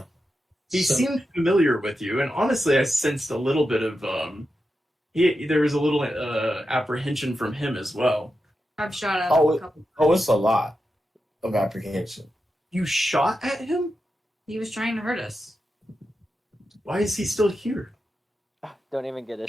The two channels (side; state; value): both; normal; correlation 0.89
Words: He So- seemed familiar with you, and honestly, I sensed a little bit of there was a little apprehension from him as well. I've shot at Oh, him a couple. Oh, it's a lot of apprehension. You shot at him? He was trying to hurt us. Why is he still here? Don't even get